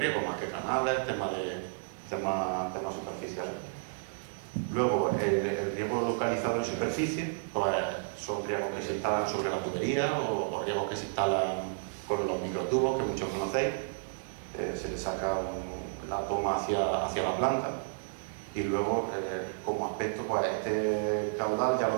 más que canales, temas superficiales. Luego, el riego localizado en superficie, pues son riegos que se instalan sobre la tubería o riegos que se instalan con los microtubos, que muchos conocéis. Se le saca la toma hacia la planta y luego, como aspecto, pues este caudal ya lo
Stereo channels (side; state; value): left; silent; digital silence